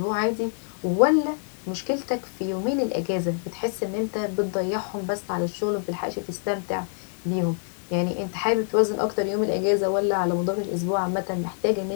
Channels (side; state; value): right; silent; 61 dB below the other